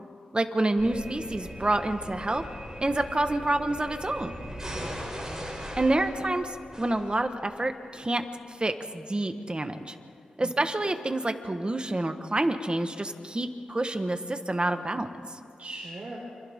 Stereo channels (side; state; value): both; normal; correlation 0.93